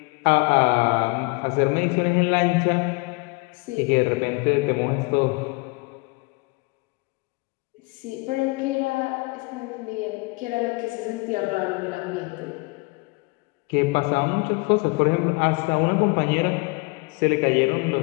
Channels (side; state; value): right; quieter; 27.8 dB